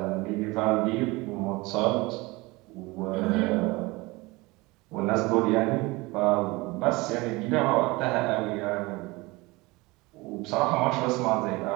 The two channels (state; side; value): quieter; left; 23.0 dB